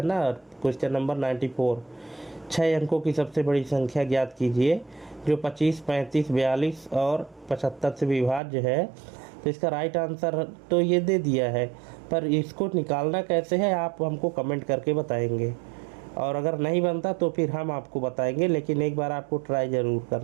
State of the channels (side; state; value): left; drops out; at 8.4 s